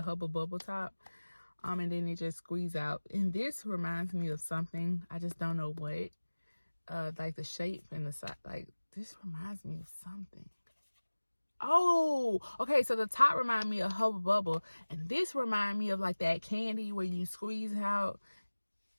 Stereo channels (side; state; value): both; inverted; correlation -1.00